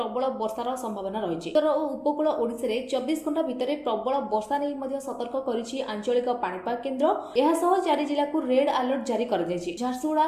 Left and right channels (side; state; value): both; identical; correlation 1.00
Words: वर्षार संभावना रही। उत्तर और उपकूल ओडिशा रे 24 घंटा भितर प्रबल वर्षा नहीं मध्य सतर्क करिछि आंचलिक पाणीपाग केन्द्र। यह सह 4 जिला को रेड अलर्ट जारी कर दैछि।